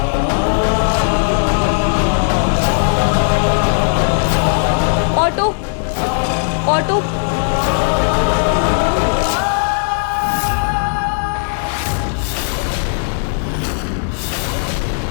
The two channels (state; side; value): silent; right; digital silence